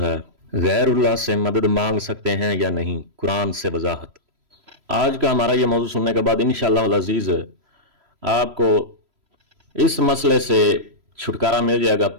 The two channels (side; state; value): left; late; 3.0 ms